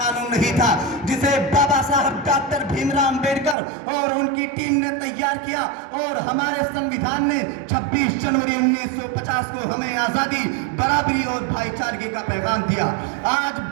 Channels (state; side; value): drops out; left; at 3.6 s